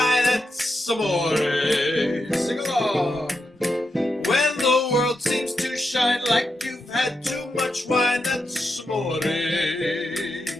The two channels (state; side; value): normal; both; correlation 0.85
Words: that's amore. Sing along. When the world seems to shine like you've had too much wine, that's amore.